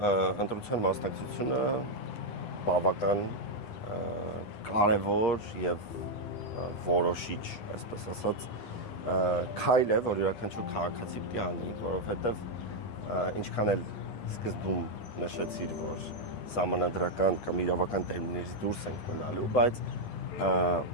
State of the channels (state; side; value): late; right; 9.7 ms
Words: ընտրության մասնակցությունը բավական կարևոր եւ որոշիչ, այսպես ասած, քայլ է, որ յուրաքանչյուր քաղաքացի պիտի անի, որովհետեւ ինչքան էլ սկզբում նշեցիր, որ սահմանադրական կամ իրավական տերմիններից դուրս ենք մնալու, բայց